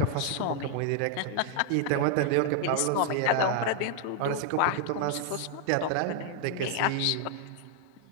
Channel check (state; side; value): different; both; correlation 0.00